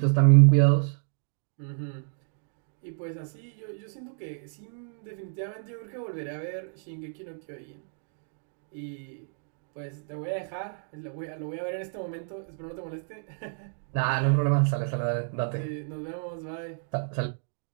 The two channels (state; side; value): silent; left; digital silence